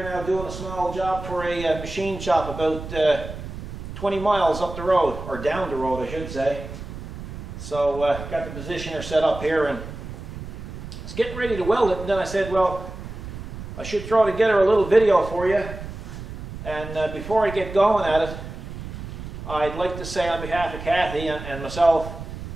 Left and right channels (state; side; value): noise; right; rumble, 10 dB below the sound